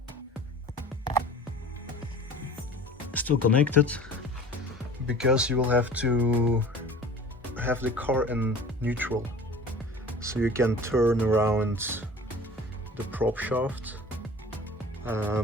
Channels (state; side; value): normal; both; correlation 0.42